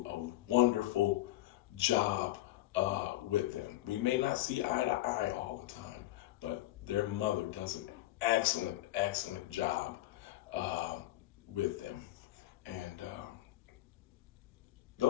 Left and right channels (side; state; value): right; quieter; 16.2 dB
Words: a wonderful job with them. We may not see eye to eye all the time, but their mother does an excellent job with them. And